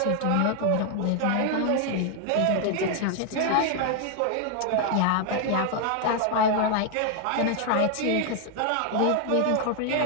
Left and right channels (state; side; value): different; both; correlation 0.00